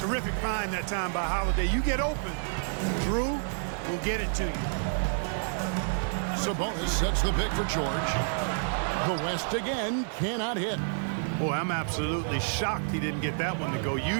find that time by Holiday. You get open, Drew will get it to you. Sabonis sets the pick for George. The West again cannot hit. Boy, I'm absolutely shocked he didn't get that one to go.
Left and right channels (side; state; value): left; silent; digital silence